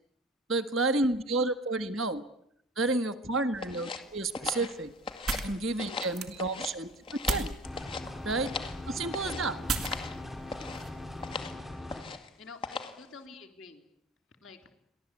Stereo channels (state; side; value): normal; both; correlation 0.41